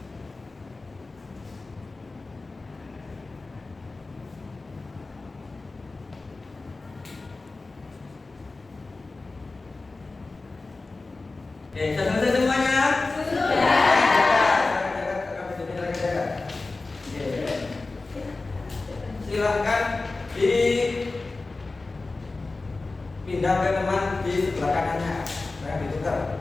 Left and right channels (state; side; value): quieter; right; 3.5 dB